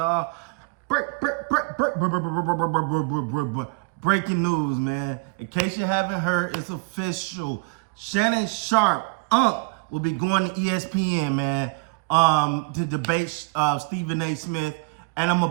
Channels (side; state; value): left; quieter; 30.1 dB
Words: breaking news, man. In case you haven't heard, it's official. Shannon Sharpe, will be going to ESPN, man, to debate Stephen A. Smith. And I'm